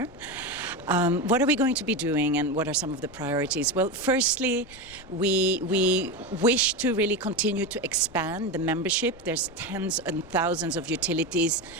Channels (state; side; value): noise; left; rumble, 22 dB below the sound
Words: What are we going to be doing, and what are some of the priorities? Well, firstly, we wish to really continue to expand the membership. There's tens and thousands of utilities